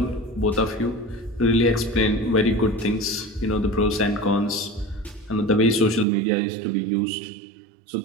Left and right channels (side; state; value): left; drops out; at 6.1 s